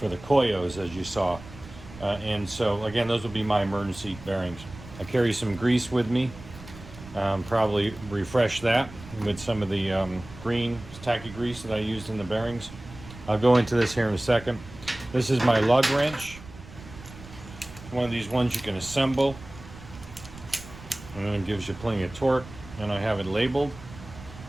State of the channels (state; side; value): noise; right; rumble, 17 dB below the sound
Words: the Koyos, as you saw. And so again, those will be my emergency bearings. I carry some grease with me. Probably refresh that with some of the green tacky grease that I used in the bearings. I'll go into this here in a second. This is my lug wrench. One of these ones you can assemble, and it gives you plenty of torque. And I have it labeled.